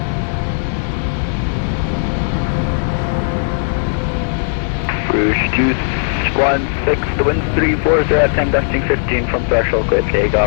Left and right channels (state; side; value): silent; right; 69 dB below the other